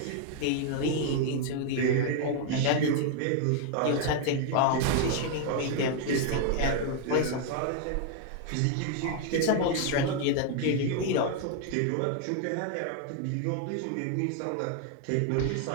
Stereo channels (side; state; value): both; different; correlation 0.00